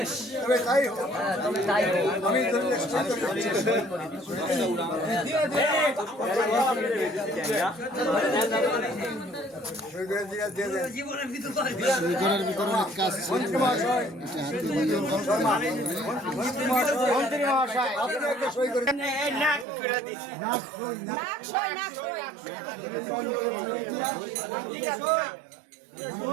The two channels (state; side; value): drops out; left; at 19.7 s